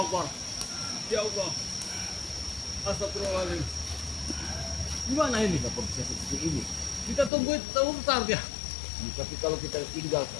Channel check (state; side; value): drops out; right; at 7.3 s